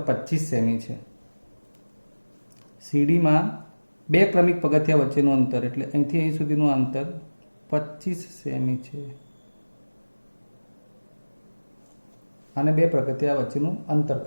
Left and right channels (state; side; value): inverted; both; correlation -1.00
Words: 25 સેમી છે. સીડીમાં 2 ક્રમિક પગથિયા વચ્ચેનું અંતર એટલે અહીંથી અહીં સુધીનું અંતર 25 સેમી છે. આને 2 પગથિયા વચ્ચેનું અંતર